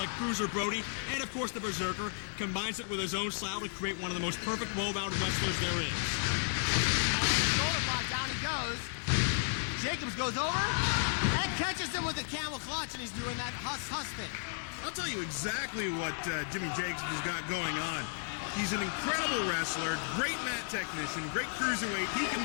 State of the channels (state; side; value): silent; right; 55 dB below the other